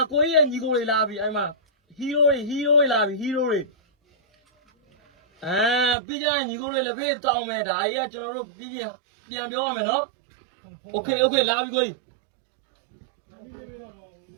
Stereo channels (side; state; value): left; drops out; at 6.0 s